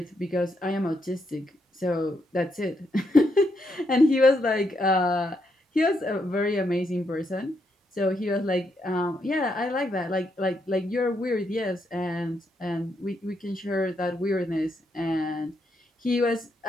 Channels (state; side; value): normal; both; correlation 0.79